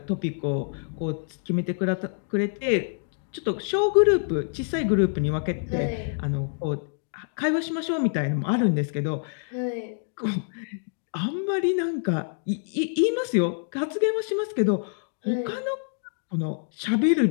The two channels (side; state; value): right; silent; digital silence